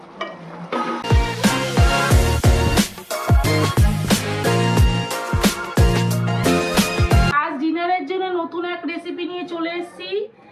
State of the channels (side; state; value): both; identical; correlation 1.00